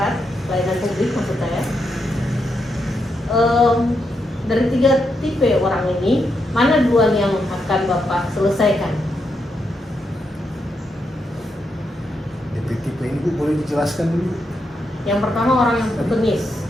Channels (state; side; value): normal; both; correlation 0.82